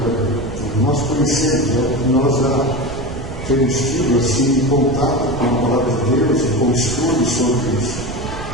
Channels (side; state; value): right; noise; rumble, 9 dB below the sound